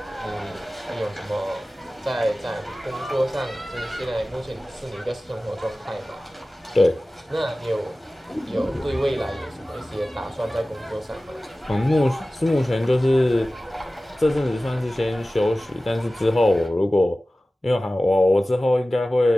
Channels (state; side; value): normal; both; correlation 0.97